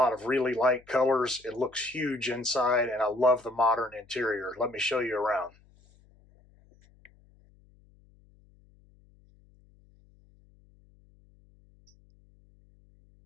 of really light colors. It looks huge inside, and I love the modern interior. Let me show you around.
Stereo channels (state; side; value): noise; left; hum, 30 dB below the sound